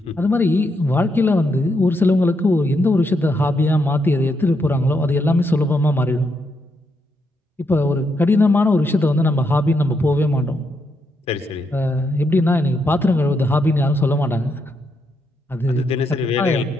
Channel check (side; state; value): both; normal; correlation 0.79